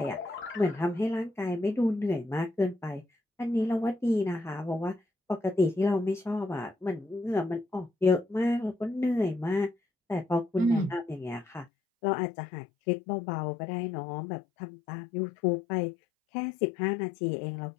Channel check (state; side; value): drops out; right; at 11.7 s